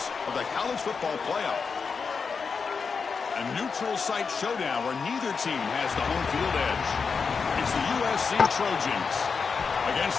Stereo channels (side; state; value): right; quieter; 5.4 dB